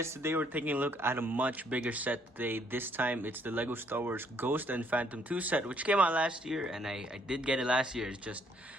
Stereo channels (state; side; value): normal; both; correlation 0.67